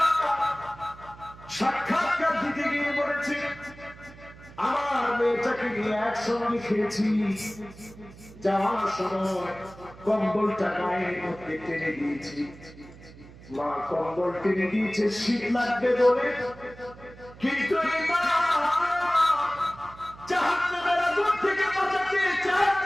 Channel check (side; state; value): right; noise; hum, 19 dB below the sound